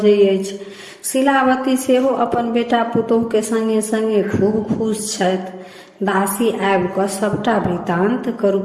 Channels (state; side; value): identical; both; correlation 1.00